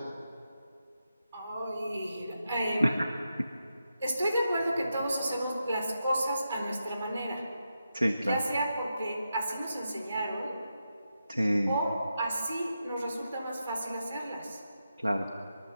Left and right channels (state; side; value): inverted; both; correlation -0.87